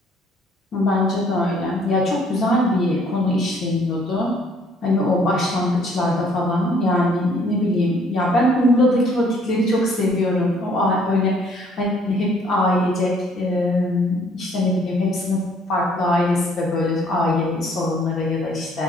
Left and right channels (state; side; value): normal; both; correlation 0.61